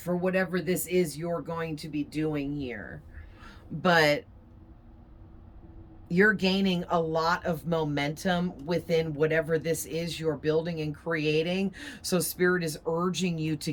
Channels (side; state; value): both; identical; correlation 1.00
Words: whatever this is you're going to be doing here. But you're gaining a lot of momentum within whatever this is you're building and creating. So Spirit is urging you to